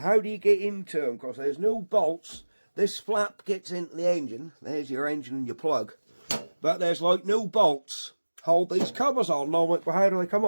do you get into them? Because there's no bolts. This flap gets into the engine. There's your engine and your plug. But there's like no bolts. Hold these covers on. And I'm like, well, how do they come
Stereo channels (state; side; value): inverted; both; correlation -1.00